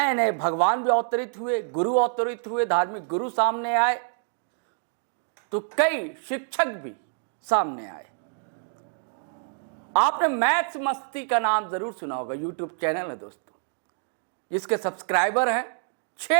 नए भगवान भी अवतरित हुए, गुरु अवतरित हुए, धार्मिक गुरु सामने आए, तो कई शिक्षक भी सामने आए। आपने मैथ्स मस्ती का नाम जरूर सुना होगा, यूट्यूब चैनल है दोस्तों, जिसके सब्सक्राइबर हैं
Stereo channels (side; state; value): left; silent; digital silence